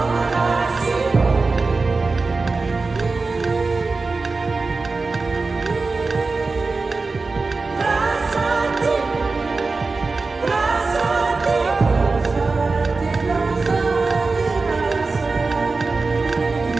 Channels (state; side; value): quieter; left; 3.9 dB